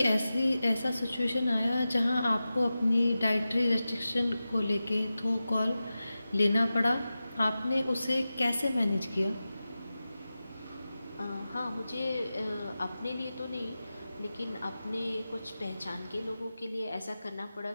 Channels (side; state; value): both; inverted; correlation -0.94